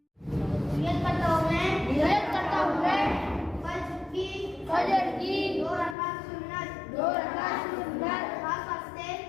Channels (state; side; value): drops out; right; at 6.0 s